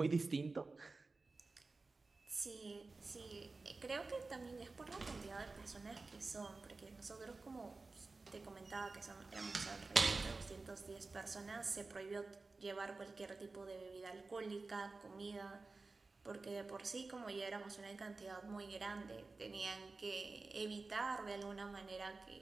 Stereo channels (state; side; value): quieter; left; 3.7 dB